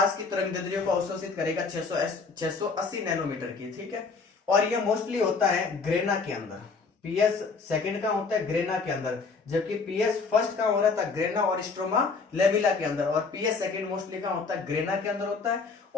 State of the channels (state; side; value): quieter; right; 4.6 dB